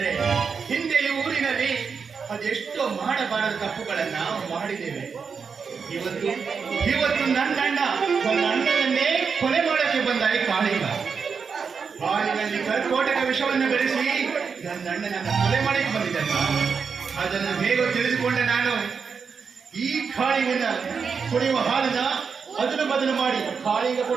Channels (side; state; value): left; quieter; 5.8 dB